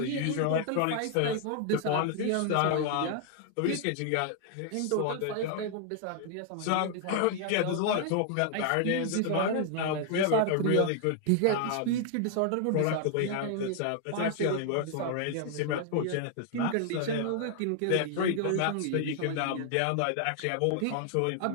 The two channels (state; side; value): different; both; correlation 0.00